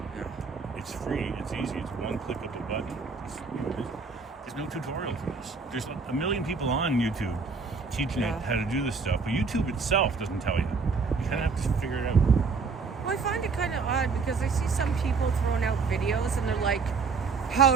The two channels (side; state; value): left; quieter; 4.8 dB